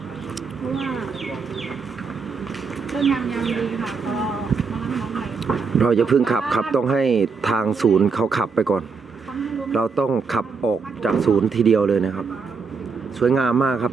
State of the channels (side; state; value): left; quieter; 5.1 dB